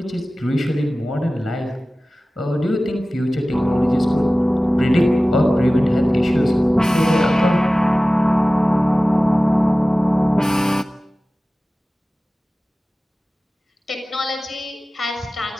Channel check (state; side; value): normal; both; correlation 0.97